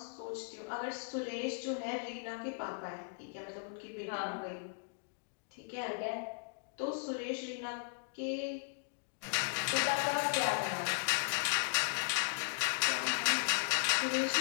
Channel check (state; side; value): silent; right; digital silence